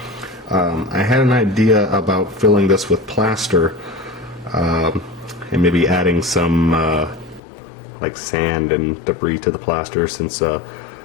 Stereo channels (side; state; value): right; drops out; at 7.4 s